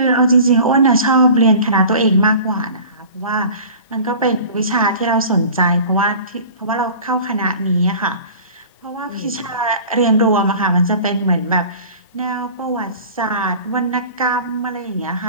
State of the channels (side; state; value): both; inverted; correlation -0.42